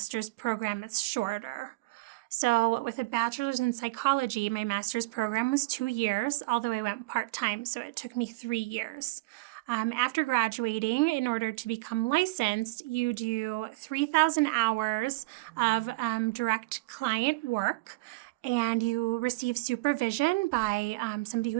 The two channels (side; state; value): left; quieter; 23.5 dB